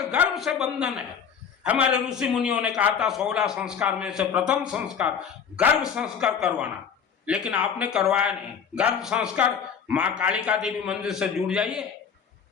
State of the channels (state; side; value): quieter; right; 7.2 dB